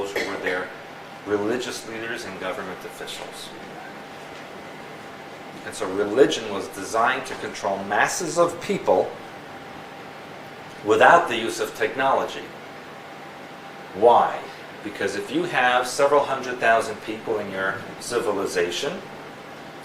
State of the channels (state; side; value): identical; both; correlation 1.00